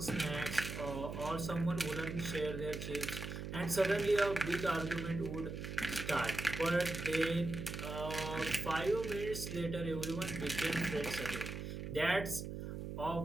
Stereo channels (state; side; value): noise; right; hum, 6 dB below the sound